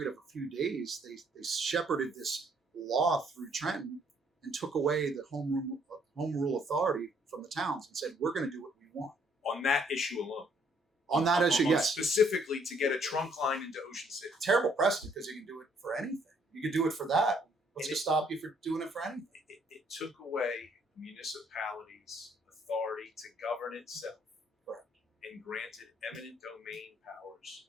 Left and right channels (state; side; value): normal; both; correlation 0.66